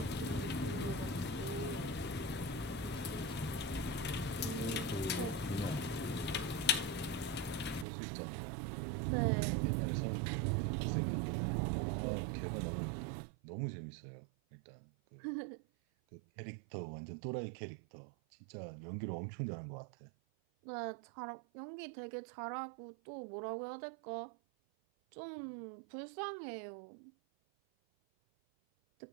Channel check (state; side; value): drops out; left; at 7.9 s